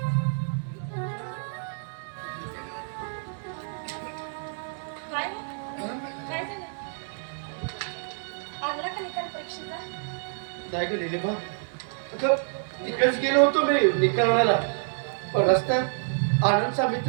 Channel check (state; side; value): silent; left; digital silence